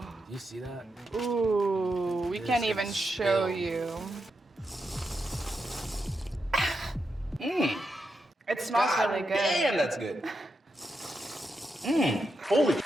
Do you see that? Ooh, we This can't is even show spilled. you. It smells God really good. damn, that's good. Holy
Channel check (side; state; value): both; normal; correlation 0.85